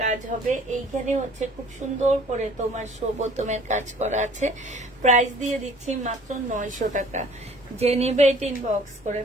কাজ হবে। এইখানে হচ্ছে খুব সুন্দর করে তোমার বোতামের কাজ করা আছে। প্রাইস দিয়ে দিচ্ছি মাত্র 900 টাকা। যে নেবে এটা ইনবক্স করে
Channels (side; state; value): both; normal; correlation 0.52